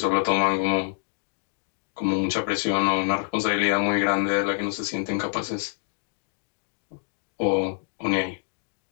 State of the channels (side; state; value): right; silent; 61 dB below the other